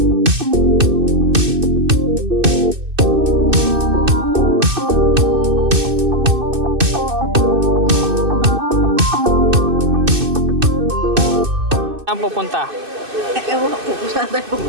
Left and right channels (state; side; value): late; left; 2.6 ms